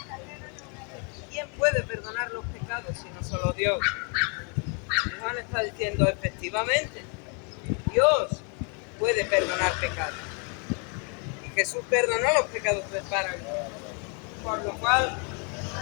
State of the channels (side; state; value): right; quieter; 36.9 dB